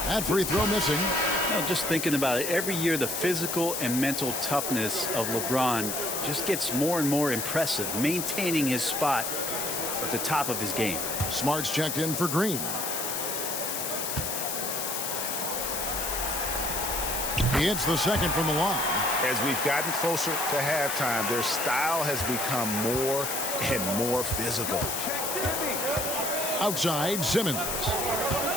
That free throw missing. Just thinking about it, every year the physical and mental toughness of LeBron just gets more and more impressive, maintaining his spot at the top of his game. Smart's checked in for Green. He hits the second from the line. As we've gotten closer to halftime, their style has become more and more physical. Outside, Simmons.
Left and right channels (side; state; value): left; noise; hiss, 2 dB below the sound